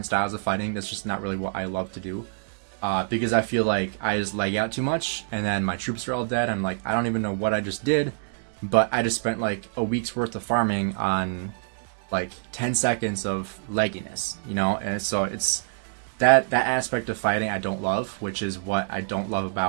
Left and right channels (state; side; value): silent; left; digital silence